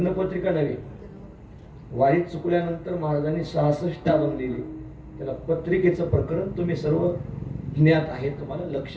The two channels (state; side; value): identical; both; correlation 1.00